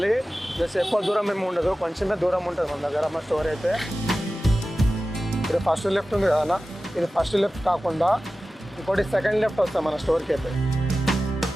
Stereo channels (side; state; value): both; normal; correlation 0.95